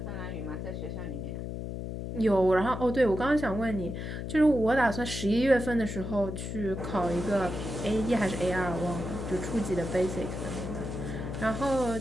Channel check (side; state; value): left; noise; hum, 6 dB below the sound